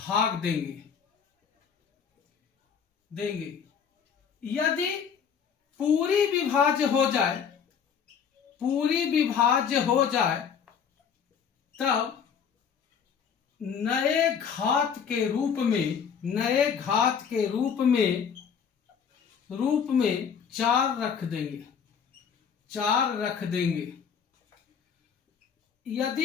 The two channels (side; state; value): right; quieter; 7.1 dB